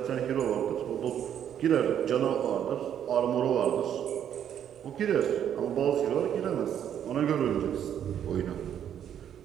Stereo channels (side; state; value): left; quieter; 9.6 dB